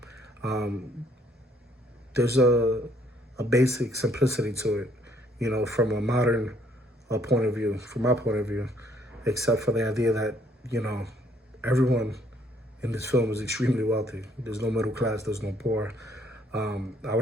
There's a basic simplicity to it, from a modern point of view, from my point of view, except for the idea that, everyone in this film is extremely wealthy. There's no middle class, there's no poor. I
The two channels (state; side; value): normal; both; correlation 0.66